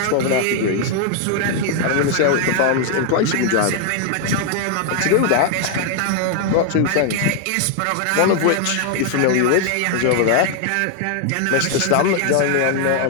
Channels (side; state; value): both; different; correlation 0.00